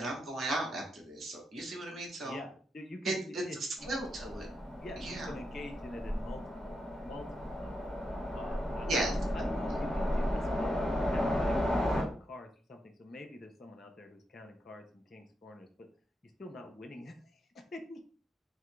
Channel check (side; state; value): both; normal; correlation 0.84